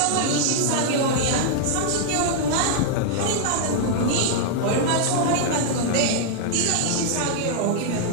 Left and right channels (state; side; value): different; both; correlation -0.01